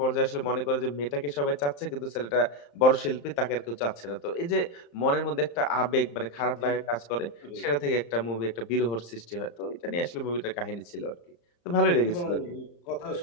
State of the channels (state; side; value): late; right; 35 ms